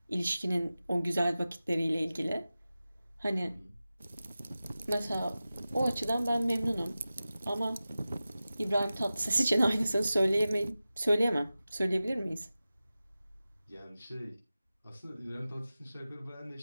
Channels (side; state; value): both; inverted; correlation -0.95